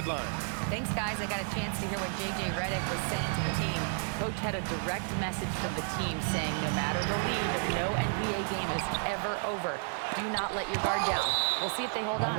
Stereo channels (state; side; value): silent; left; 57 dB below the other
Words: Thanks, guys. I got a chance to hear what J.J. Redick was saying to the team. Coach had a direct message from the team saying no matter the lead, no NBA game is ever over. Do not let your guard down. We'll see if they hold